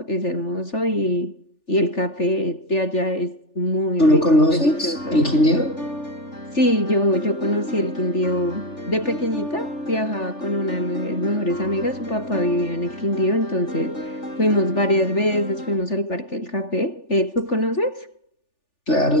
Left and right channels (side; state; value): right; late; 3.4 ms